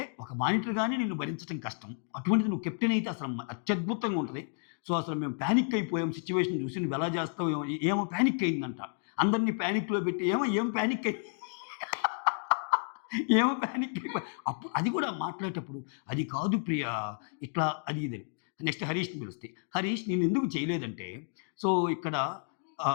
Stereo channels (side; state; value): right; silent; 57 dB below the other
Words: ఒక మానిటర్‌గానే నిన్ను భరించటం కష్టం. అటువంటిది నువ్వు కెప్టెన్ అయితే అసలు అత్యద్భుతంగా ఉంటది. సో, అసలు మేము పానిక్ అయిపోయాం సిట్యుయేషన్ చూసి నువ్వెలా చేస్తావో ఏమో ఏమో పానిక్ అయిందంట. అందరిని పానిక్‌లో పెట్టి ఏం పానిక్ అయి ఏమో పానిక్ అయిపోయి అది కూడా మాట్లాడేటప్పుడు, "అది కాదు ప్రియా ఇట్లా" అది ఇదని. నెక్స్ట్ హరీష్‌ని పిలుస్తే, "హరీష్ నిన్నెందుకు చేయలేదంటే, సో ఇక్కడ